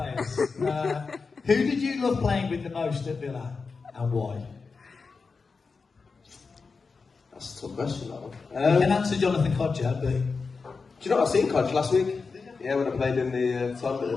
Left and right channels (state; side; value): quieter; right; 4.7 dB